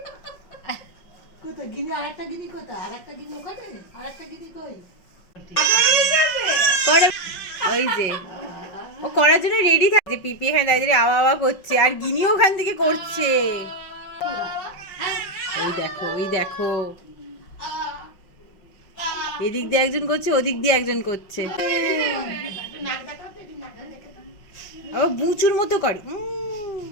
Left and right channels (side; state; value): right; late; 5.4 ms